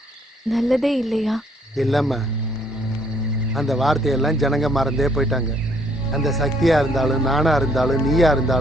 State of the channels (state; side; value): normal; both; correlation 0.66